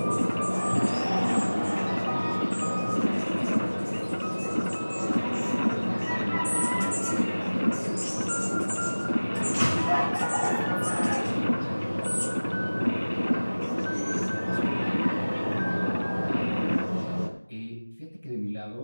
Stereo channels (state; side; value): inverted; both; correlation -1.00